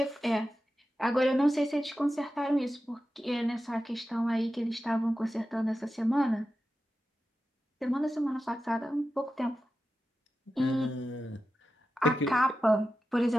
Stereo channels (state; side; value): normal; both; correlation 0.91